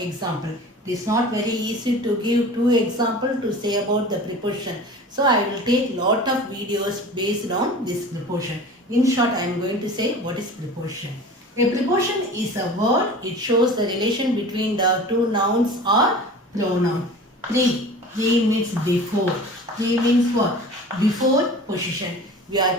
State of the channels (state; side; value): normal; both; correlation 0.39